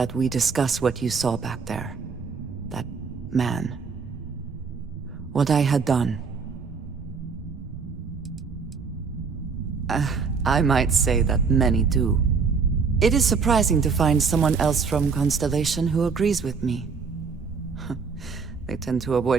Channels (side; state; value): left; quieter; 5.3 dB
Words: we discuss what you saw back there. That man. What I had done. I might say that many do. It is surprising to find someone else from Constellation who agrees with me. They tend to